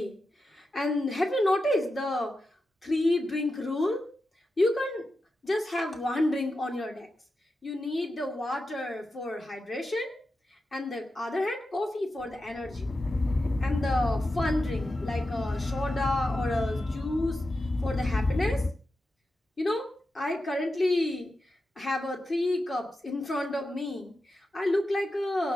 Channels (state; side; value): normal; both; correlation 0.90